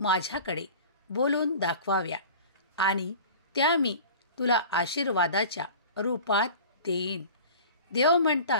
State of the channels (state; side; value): inverted; both; correlation -0.40